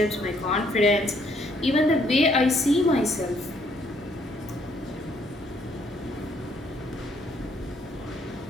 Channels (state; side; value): normal; both; correlation 0.67